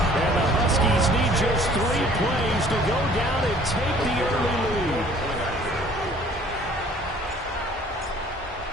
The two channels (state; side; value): normal; both; correlation 0.54